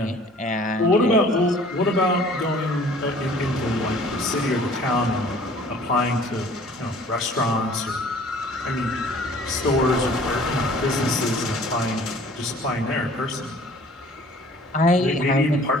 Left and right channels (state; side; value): normal; both; correlation 0.51